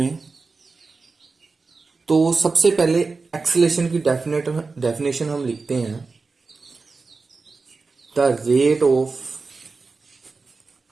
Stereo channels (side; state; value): left; quieter; 4.2 dB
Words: तो सबसे पहले एक्सेलेरेशन की डेफिनेशन हम लिखते हैं, the rate of